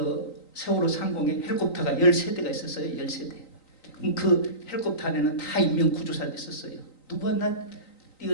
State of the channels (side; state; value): right; late; 3.9 ms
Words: 세월호 상공에 헬리콥터가 13대가 있었어요. 13대. 그럼 그 헬리콥터 안에는 다 인명구조사들이 있었어요. 누구 하나